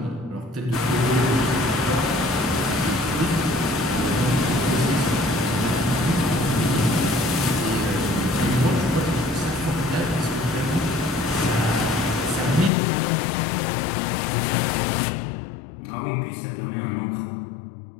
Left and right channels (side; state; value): right; drops out; at 12.7 s